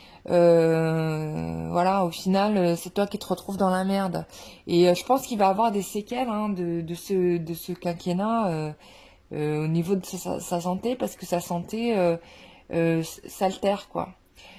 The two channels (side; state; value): both; identical; correlation 1.00